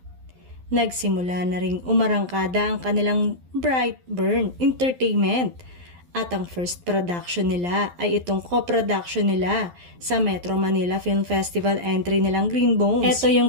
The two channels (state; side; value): late; left; 11 ms